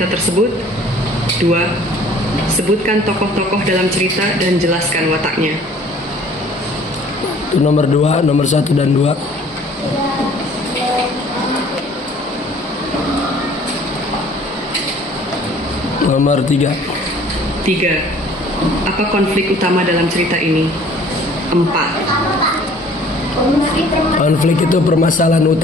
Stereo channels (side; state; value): both; normal; correlation 0.53